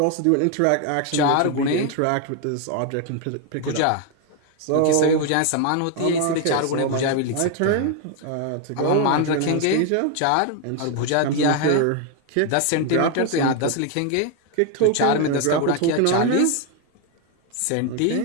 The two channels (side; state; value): both; different; correlation 0.01